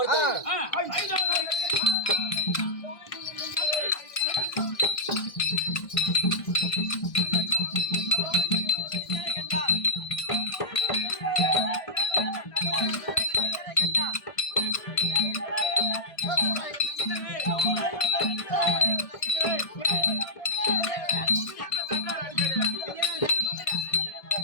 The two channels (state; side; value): late; right; 1.6 ms